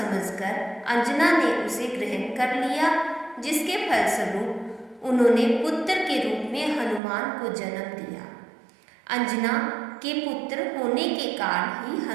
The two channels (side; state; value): left; drops out; at 7.0 s